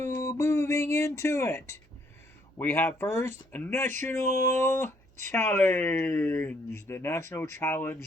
moving into it, we have first a National Challenge, the National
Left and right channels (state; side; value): normal; both; correlation 0.68